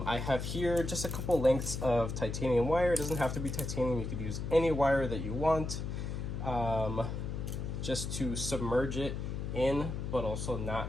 have here just a couple lengths of titanium wire. It doesn't have to be titanium, you could use any wire that you want, just to submerge it in, but also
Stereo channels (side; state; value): left; noise; hum, 4 dB below the sound